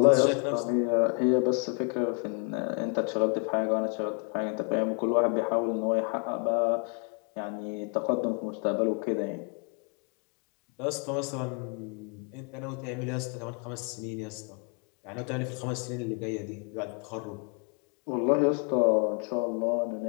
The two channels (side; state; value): right; quieter; 38.1 dB